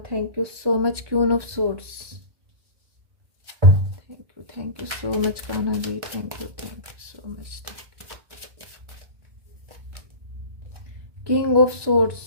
Thank you so much Queen of Swords. Thank you so much Kanha ji, thank you so much. King of Swords.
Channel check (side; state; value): left; late; 1.2 ms